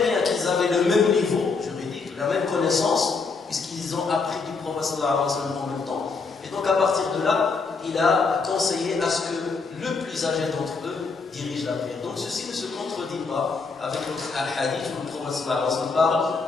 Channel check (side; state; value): right; quieter; 4.5 dB